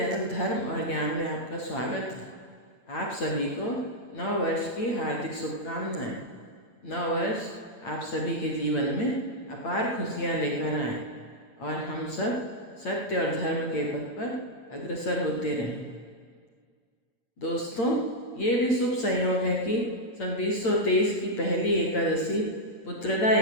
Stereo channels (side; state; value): right; late; 8.8 ms